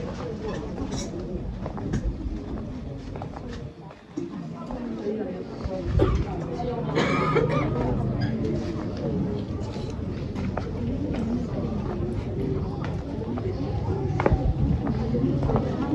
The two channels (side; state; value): both; identical; correlation 1.00